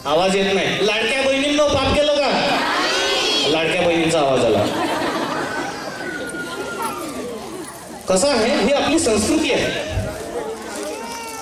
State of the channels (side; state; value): both; identical; correlation 1.00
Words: आवाज येत नाही. लाडक्या बहिणींनो पाप केलं का? लाडक्या बहिणींचा आवाज आला. कसं आहे, ही आपली संस्कृती आहे.